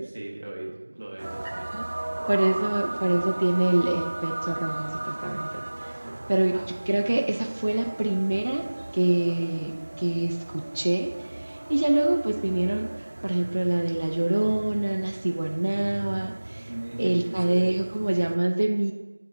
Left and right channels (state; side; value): inverted; both; correlation -1.00